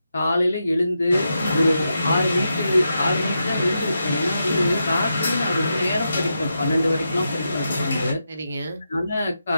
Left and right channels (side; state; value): both; inverted; correlation -0.86